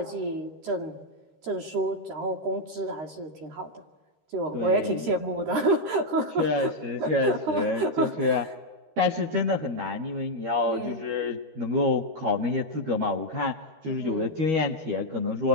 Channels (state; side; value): late; left; 13 ms